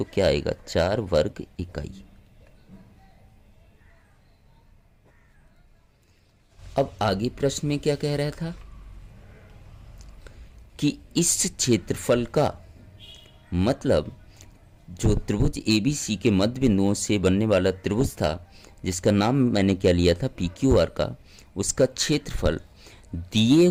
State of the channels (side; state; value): both; identical; correlation 1.00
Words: क्या आएगा? 4 वर्ग इकाई। अब आगे प्रश्न में क्या कह रहा था कि इस क्षेत्रफल का मतलब जो त्रिभुज ABC के मध्य बिंदुओं से बनने वाला त्रिभुज था, जिसका नाम मैंने क्या लिया था? PQR का, उसका क्षेत्रफल दिए